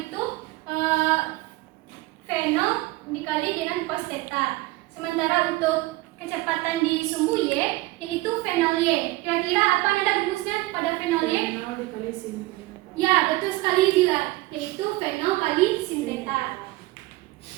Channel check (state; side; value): quieter; left; 19.9 dB